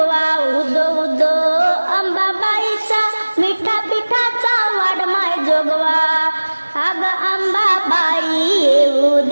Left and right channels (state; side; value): inverted; both; correlation -1.00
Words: उदो उदो अंबाबाईचा मिठा पिठाचा वाढमाय जोगवा. अग अंबाबाई येऊ